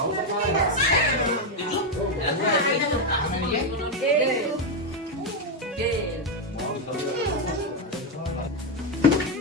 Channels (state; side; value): normal; both; correlation 0.05